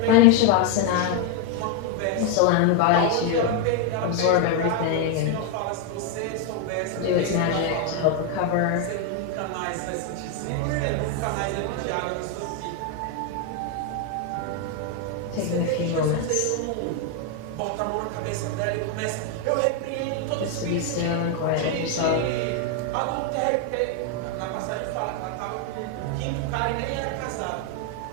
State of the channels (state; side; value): different; both; correlation 0.01